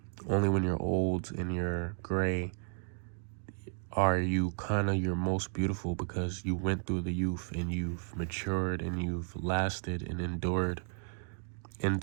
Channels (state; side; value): silent; left; digital silence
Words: Only when you're old and you're gray are you kind of your most beautiful, because you went through the youth and you've matured and you've lasted and endured